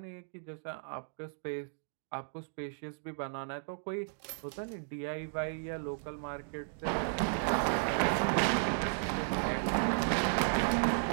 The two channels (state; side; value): silent; left; digital silence